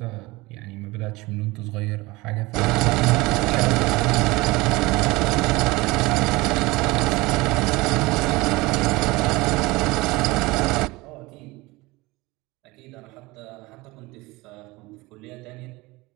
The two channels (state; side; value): quieter; left; 22.0 dB